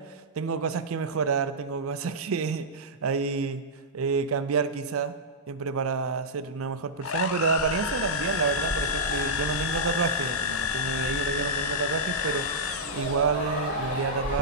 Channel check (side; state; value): both; normal; correlation -0.11